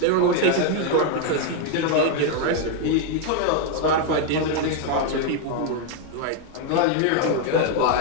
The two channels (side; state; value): both; different; correlation 0.01